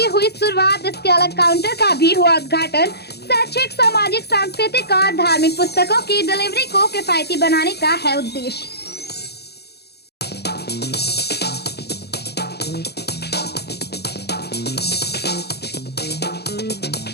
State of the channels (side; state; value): right; late; 0.48 ms